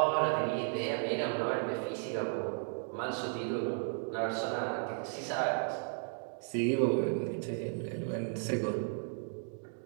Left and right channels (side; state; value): left; silent; 55 dB below the other